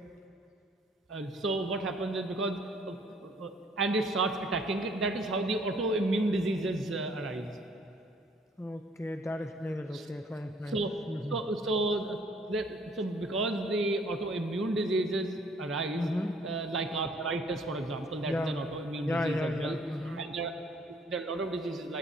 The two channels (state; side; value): normal; both; correlation 0.60